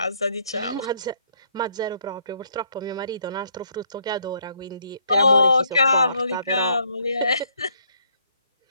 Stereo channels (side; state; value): both; inverted; correlation -0.69